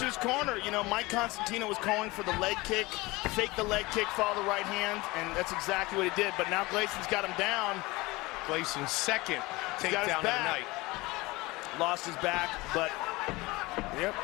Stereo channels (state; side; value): quieter; right; 22.0 dB